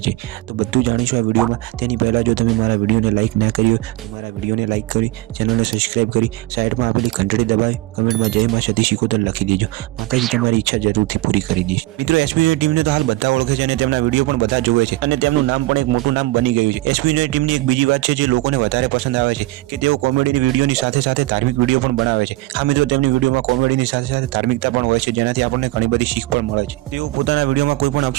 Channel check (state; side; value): quieter; left; 19.4 dB